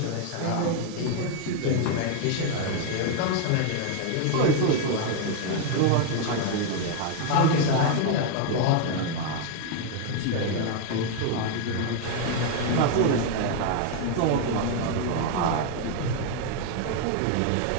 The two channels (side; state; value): both; different; correlation 0.01